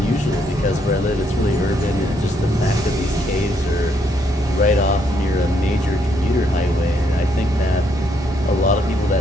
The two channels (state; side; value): normal; both; correlation 0.73